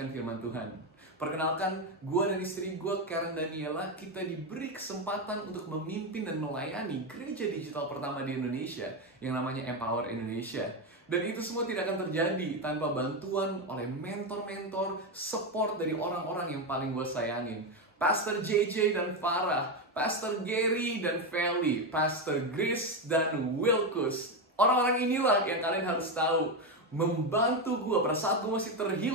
firman Tuhan. Perkenalkan, gue dan istri gue, Karen Daniela, kita diberi kesempatan untuk memimpin dan melayani gereja digital pertama di Indonesia yang namanya Empower Indonesia. Dan itu semua tidak akan terjadi tanpa bantuan oleh mentor-mentor, support dari orang-orang yang paling gue sayangin. Pastor JJ dan Farah, Pastor Gary dan Feli, Pastor Grace dan Wilkus. Orang-orang inilah yang kalian harus tahu membantu gue. Pada saat gue masih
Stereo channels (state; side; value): normal; both; correlation 0.10